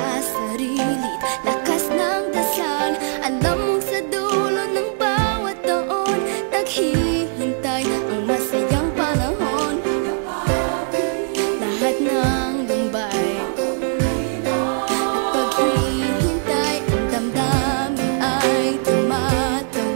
sarili, lakas ng dasal. Alam mong sa dulo ng bawat taon, naghihintay ang masayang panahon. Lahat ng lumbay at paghihintay, ang damdamin ay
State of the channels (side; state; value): left; silent; digital silence